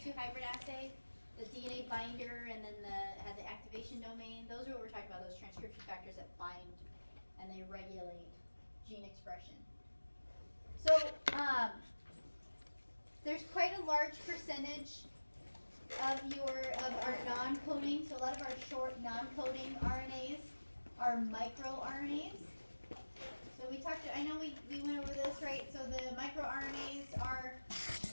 2 hybrid assay? The DNA binder and then had the activation domain? Those are what we're talking about, those transcription factors that bind and they regulate gene expression. So there's quite a large percentage of our non-coding. So a lot of our short non-coding RNAs are microRNAs. So we talked, I know we went over this, right? So the microRNAs are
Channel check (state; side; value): inverted; both; correlation -1.00